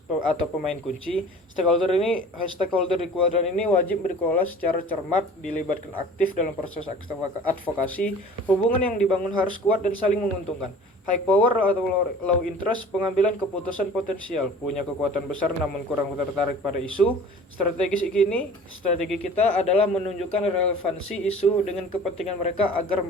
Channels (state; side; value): normal; both; correlation 0.44